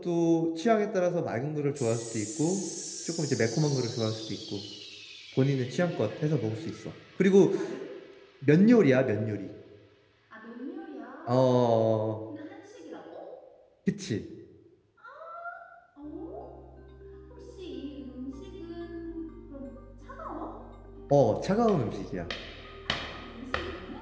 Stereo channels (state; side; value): identical; both; correlation 1.00